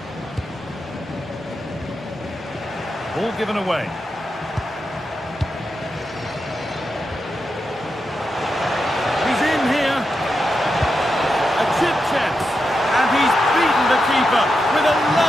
Ball given away. He's in here. A chip chance. And he's beaten the keeper with a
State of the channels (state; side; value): normal; both; correlation 0.87